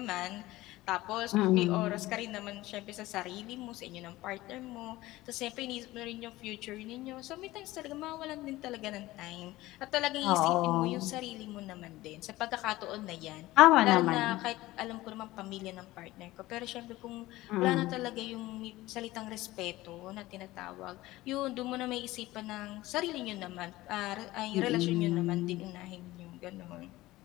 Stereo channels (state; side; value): quieter; right; 17.8 dB